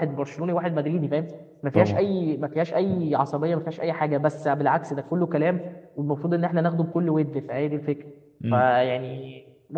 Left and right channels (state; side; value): identical; both; correlation 1.00